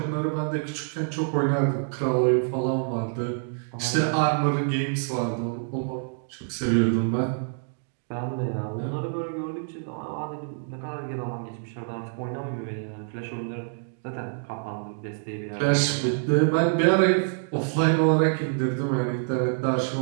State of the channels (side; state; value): left; silent; digital silence